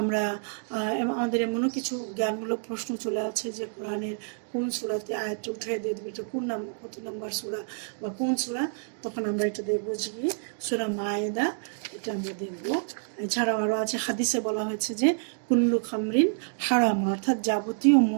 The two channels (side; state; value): left; silent; digital silence